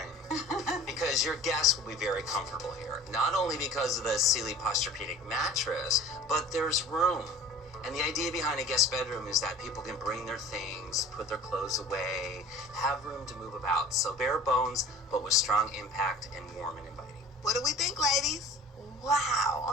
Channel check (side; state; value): both; normal; correlation 0.42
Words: Because your guests will be very comfortable here. Not only because of the Sealy Posturepedic mattress, but there's room. And the idea behind a guest bedroom is that people can bring their things, put their clothes away, have room to move about. So bare bones, but with strong impact and warm and inviting. What do we think, ladies?